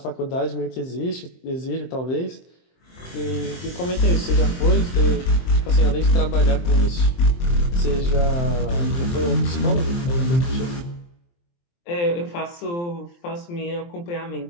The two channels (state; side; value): late; right; 23 ms